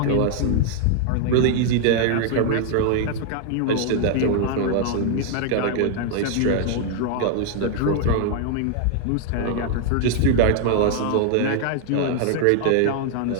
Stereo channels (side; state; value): both; different; correlation 0.00